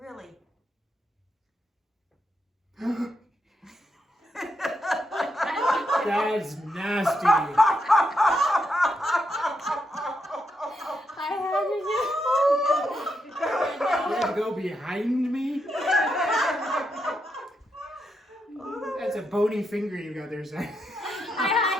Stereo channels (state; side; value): normal; both; correlation 0.82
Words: That's nasty. I had to do You had to go behind me? That's a bony finger you got there, son. I